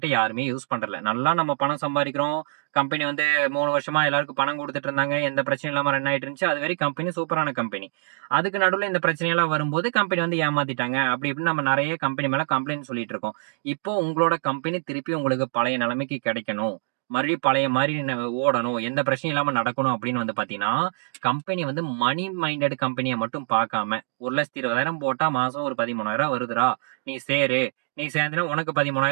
யாருமே யூஸ் பண்றதில்ல. நல்லா நம்ம பணம் சம்பாரிக்கிறோம். கம்பெனி வந்து 3 வருஷமா எல்லாருக்கும் பணம் குடுத்துட்டு இருந்தாங்க. எந்த பிரச்சனையும் இல்லாம ரன் ஆயிட்டு இருந்துச்சு. அதுவரை கம்பெனி சூப்பரான கம்பெனி. அதுக்கு நடுவுல இந்த பிரச்சனையெல்லாம் வரும்போது கம்பெனி வந்து ஏமாத்திட்டாங்க. அப்படி இப்படின்னு நம்ம நெறைய கம்பெனி மேல கம்ப்ளைண்ட் சொல்லிட்டு இருக்கோம். இப்போ உங்களோட கம்பெனி திருப்பி உங்களுக்கு பழைய நிலைமைக்கு கிடைக்கணும். மறுபடியும் பழைய மாதிரி ஓடணும், எந்த பிரச்சனையும் இல்லாம நடக்கணும் அப்படின்னு வந்து பாத்தீங்கன்னா, கம்பெனி வந்து மணி மைண்டட் கம்பெனியை மட்டும் பார்க்காம 1,20,000 போட்டா மாசம் ஒரு 13,000 வருதுடா, நீ சேரு, நீ சேர்ந்தனா உனக்கு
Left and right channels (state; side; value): silent; left; digital silence